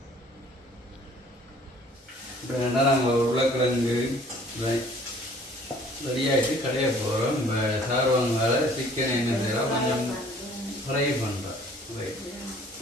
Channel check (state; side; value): normal; both; correlation 0.54